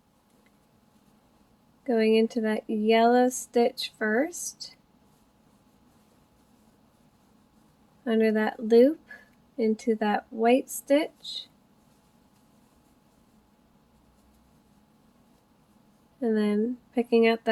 Going into that yellow stitch first. Under that loop, into that white stitch. And then picking up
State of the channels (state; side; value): identical; both; correlation 1.00